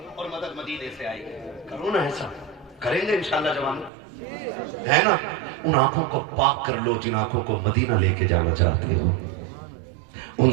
اور مدد مدینے سے آئے گی. کرو نا ایسا, کریں گے انشاءاللہ جوانوں, ہے نا؟ ان آنکھوں کو پاک کر لو جن آنکھوں کو مدینہ لے کے جانا چاہتے ہو. ان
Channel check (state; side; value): drops out; left; at 3.9 s